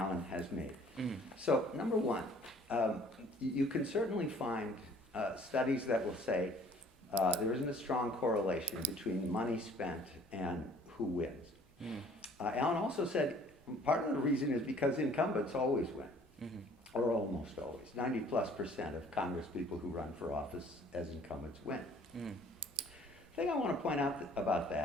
has made. So, number one, You can certainly find studies that will say there isn't a strong correlation between money spent and who wins. Alan also said part of the reason is because incumbents always win, or almost always. 90+% of Congress people who run for office as incumbents win. The thing I want to point out about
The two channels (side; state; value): both; normal; correlation 0.55